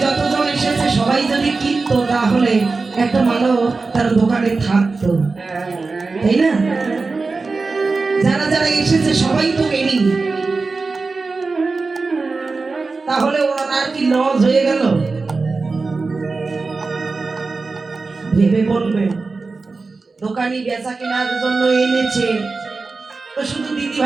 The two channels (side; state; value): left; quieter; 4.0 dB